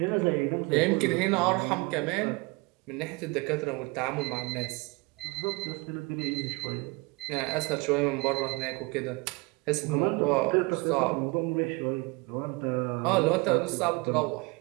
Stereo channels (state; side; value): quieter; left; 26.6 dB